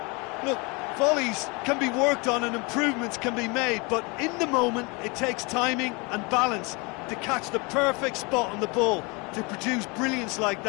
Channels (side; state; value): right; quieter; 28.6 dB